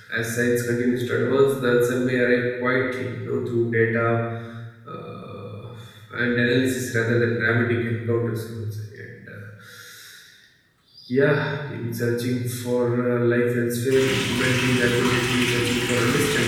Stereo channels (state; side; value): identical; both; correlation 1.00